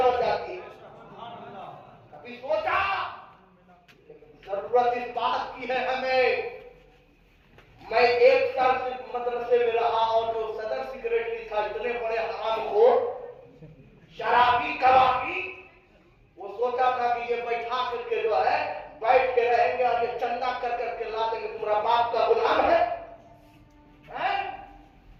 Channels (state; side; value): identical; both; correlation 1.00